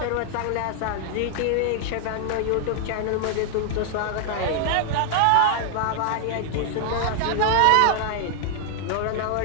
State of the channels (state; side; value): different; both; correlation 0.00